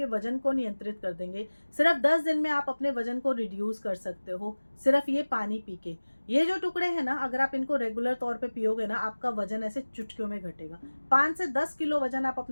वजन को नियंत्रित कर देंगे। सिर्फ 10 दिन में आप अपने वजन को रिड्यूस कर सकते हो, सिर्फ ये पानी पी के। ये जो टुकड़े हैं ना, अगर आप इनको रेगुलर तौर पे पियोगे ना, आपका वजन ऐसे चुटकियों में घटेगा। 5 से 10 किलो वजन आप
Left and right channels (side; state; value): both; inverted; correlation -1.00